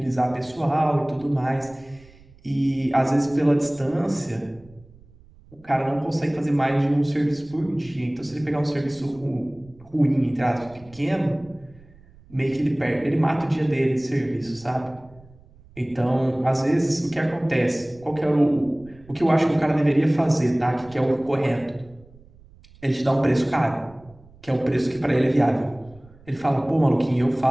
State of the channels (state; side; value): noise; right; rumble, 25 dB below the sound